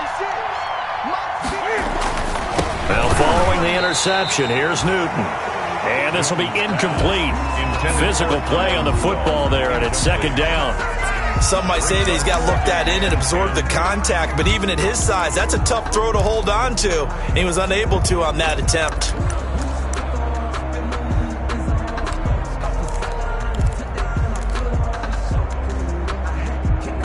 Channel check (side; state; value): both; identical; correlation 1.00